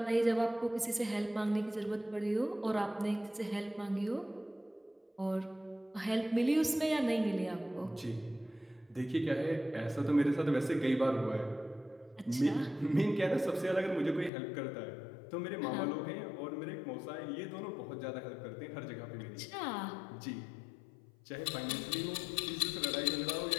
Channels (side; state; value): right; drops out; at 14.3 s